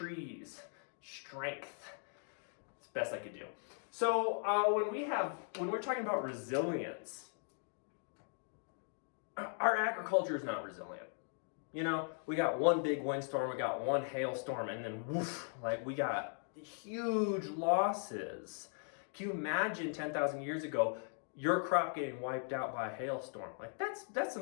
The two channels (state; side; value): silent; right; 52 dB below the other